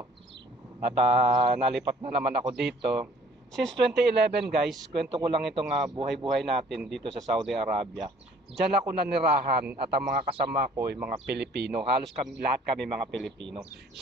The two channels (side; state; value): both; normal; correlation 0.56